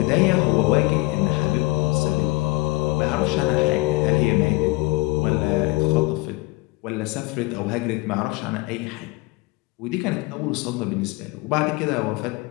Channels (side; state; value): right; quieter; 23.0 dB